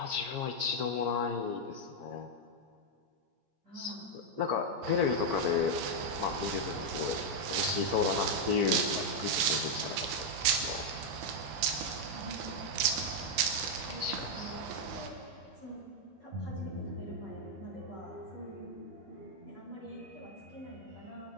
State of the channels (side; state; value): left; late; 15 ms